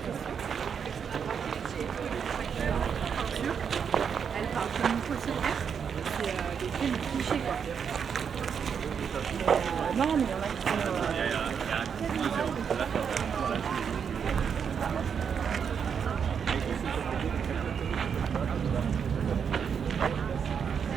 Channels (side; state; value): left; quieter; 7.1 dB